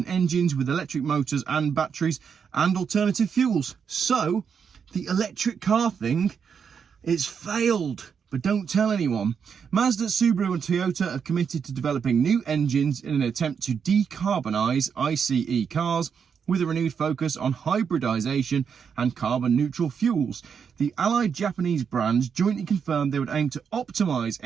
engines with electric motors and batteries and alternative fuels. So the electric car thing, it's failed. But don't tell anyone. Mazda, Subaru and Toyota have committed to developing new engines in an attempt to decarbonise ICE cars with a renewed focus on hybridisation and carbon neutral fuels. The allied Japanese brands jointly confirmed they would aim to optimise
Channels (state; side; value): quieter; left; 6.8 dB